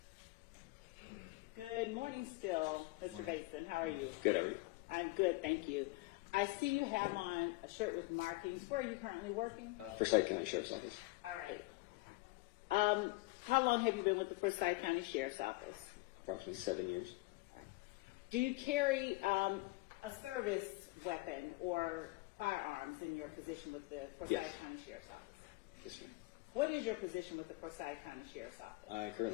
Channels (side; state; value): right; quieter; 22.6 dB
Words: Good morning still, Mr. Morning. Bateson. How are Morning. you? Good, how are you? I'm good, thank you. I see you have on a shirt with markings. Where are you currently working? Forsyth County Sheriff's Office. All right. How long have you been with the Forsyth County Sheriff's Office? Approximately 7 years. All right. Do you carry a service weapon or firearms in your position with the Forsyth Yes. County Sheriff's Office? Yes, ma'am. What is your position with the Forsyth County Sheriff's Office? I